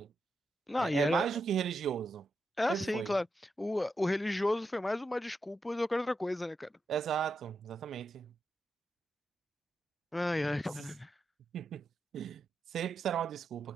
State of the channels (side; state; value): both; normal; correlation 0.86